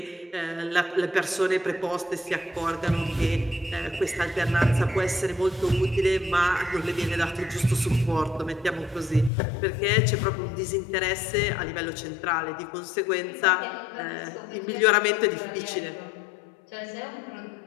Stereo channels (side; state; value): right; drops out; at 9.3 s